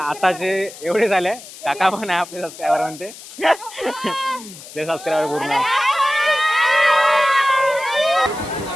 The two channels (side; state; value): left; noise; hiss, 16 dB below the sound